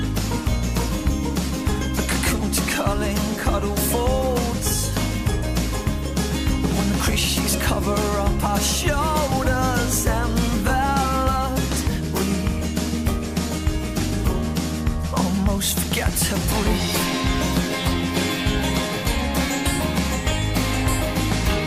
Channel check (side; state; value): both; identical; correlation 1.00